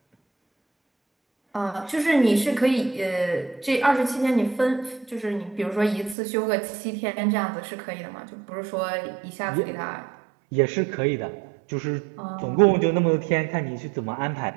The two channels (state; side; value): drops out; left; at 6.2 s